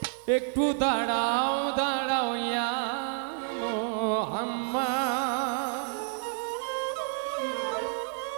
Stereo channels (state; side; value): silent; left; digital silence